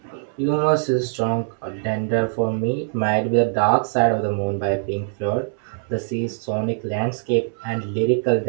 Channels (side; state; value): left; silent; 64 dB below the other